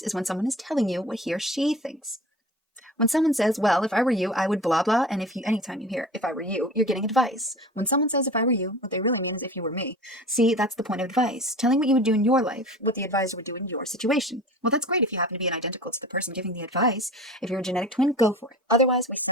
is when someone is telling you what he or she thinks. When someone says, well, if I were you, I would blah blah, and anytime you hear if I were you, you're getting advice. When someone says if I were you, what they really mean is if you were me. See, that's the point of advice. Telling what you would do in your life, what the advisor would do in your situation. Well, that's great if you happen to be identical to the person giving the advice. If you're a genetic twin, go for it. Otherwise, we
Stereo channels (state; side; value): normal; both; correlation 0.37